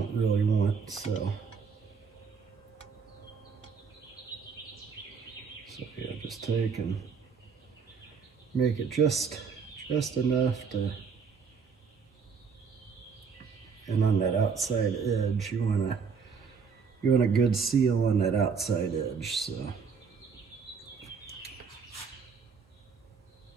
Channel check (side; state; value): left; quieter; 5.8 dB